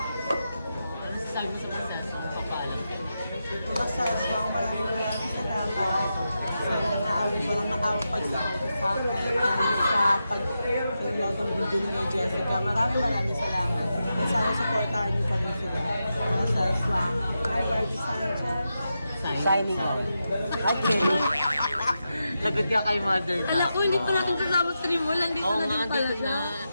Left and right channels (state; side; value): inverted; both; correlation -0.88